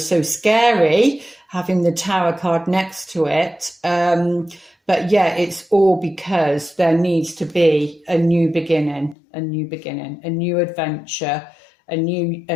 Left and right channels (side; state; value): right; drops out; at 9.2 s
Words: scary having the Tower card next to it. But yeah, it's all because there needs to be a new beginning, a new adventure, a new